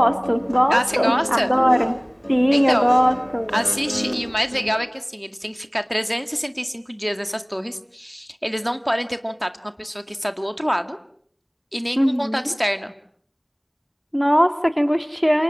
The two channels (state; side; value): identical; both; correlation 1.00